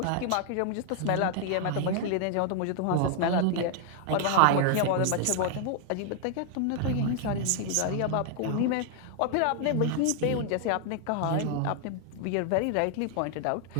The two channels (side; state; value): both; different; correlation 0.00